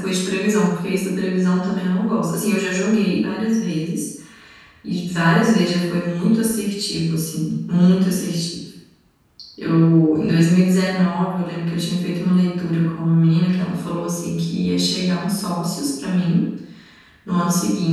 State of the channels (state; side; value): identical; both; correlation 1.00